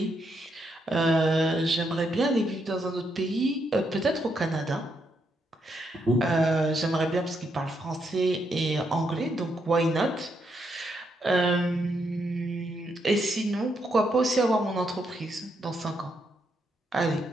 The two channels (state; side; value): normal; both; correlation 0.78